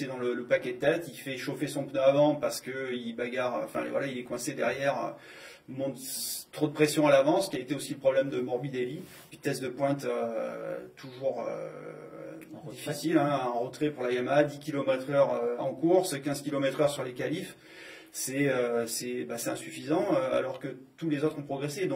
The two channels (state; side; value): identical; both; correlation 1.00